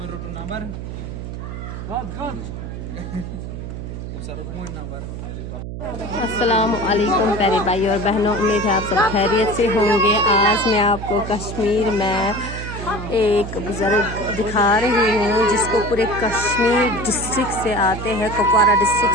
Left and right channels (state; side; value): noise; right; hum, 8 dB below the sound